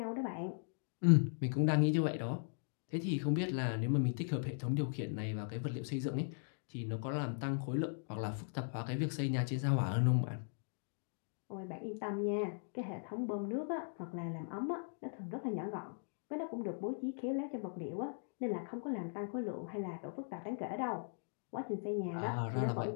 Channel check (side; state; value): right; silent; digital silence